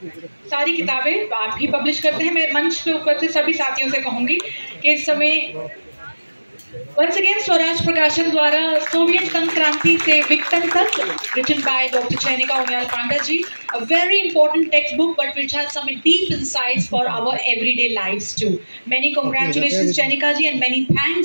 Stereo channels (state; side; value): inverted; both; correlation -1.00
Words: सारी किताबें आप ही पब्लिश करते हैं, मैं मंच पे ऊपर से सभी साथियों से कहूंगी कि इस समय Once again, स्वराज प्रकाशन द्वारा सोवियत संघ क्रांति से विघटन तक, written by Dr. Chenika Umayal Panda ji, a very important textbook, but which has some deep insights for our everyday lives too. Many congratulations, Chenika ji, and many